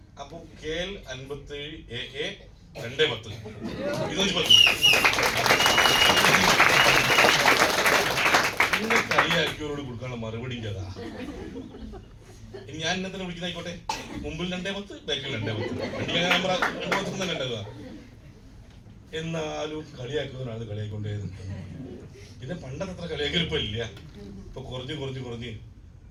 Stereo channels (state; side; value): identical; both; correlation 1.00